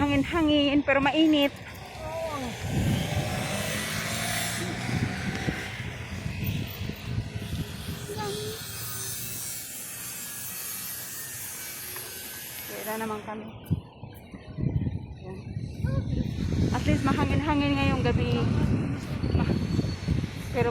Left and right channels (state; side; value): identical; both; correlation 1.00